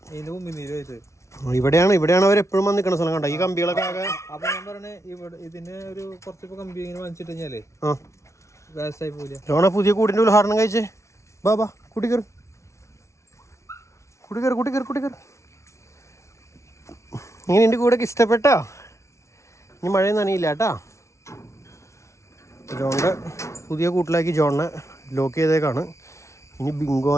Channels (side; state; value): right; late; 0.14 ms